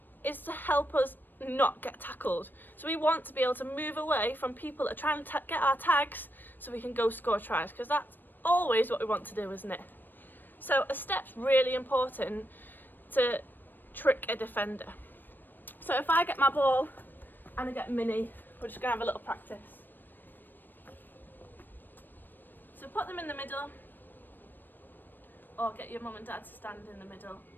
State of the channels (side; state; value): right; late; 0.092 ms